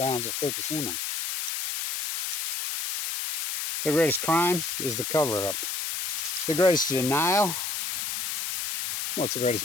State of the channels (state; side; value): noise; left; hiss, 1 dB below the sound